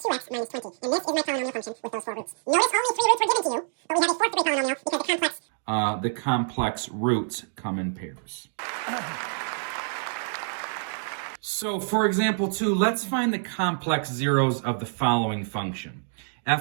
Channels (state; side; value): silent; left; digital silence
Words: 2x minus 20. And this is my polynomial function with those four roots. Notice only 3 roots were given to you, but we have a fourth degree polynomial because The complex roots come in pairs. So, for example 2, let's find the complex zeros of the following function.